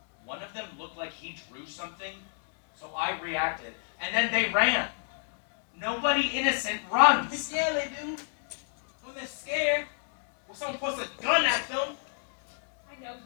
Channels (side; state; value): right; silent; digital silence